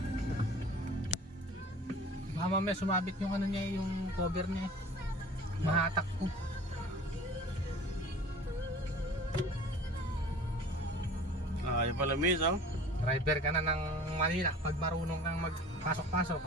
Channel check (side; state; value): both; normal; correlation 0.44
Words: Mama may sumabit yung ano niya, yung cover niya. Mahatak ko. Yung pala miss oh. Driver ka na ng Manila pag marunong kang magpasok-pasok.